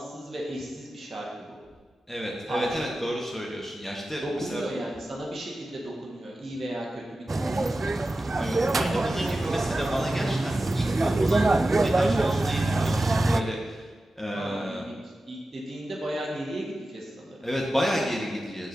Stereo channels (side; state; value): both; normal; correlation 0.93